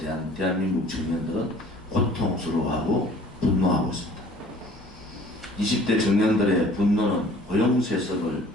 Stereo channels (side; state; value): both; normal; correlation 0.52